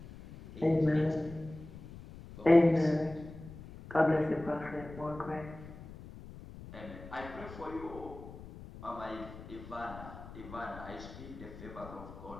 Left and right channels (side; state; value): left; noise; rumble, 14 dB below the sound